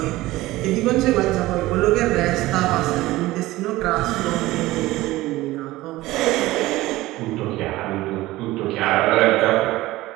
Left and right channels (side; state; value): left; quieter; 17.9 dB